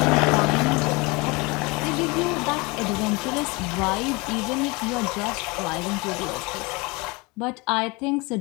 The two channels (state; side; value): quieter; right; 26.2 dB